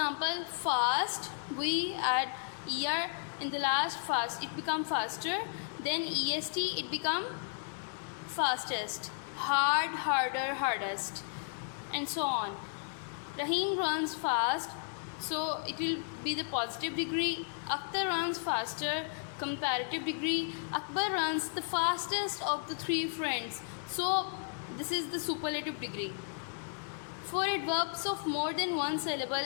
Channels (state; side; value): silent; right; digital silence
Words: fast, we add er in the last fast, it become faster. Then est, it become fastest. Hard, harder, hardest, and so on. Rahim runs fast, so it will be the positive degree. Akhtar runs faster, comparative degree. Akbar runs the fastest of the three friends, so this is the superlative degree. For adverbs of more than one syllable